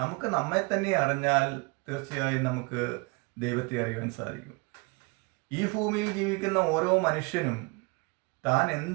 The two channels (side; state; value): left; quieter; 28.4 dB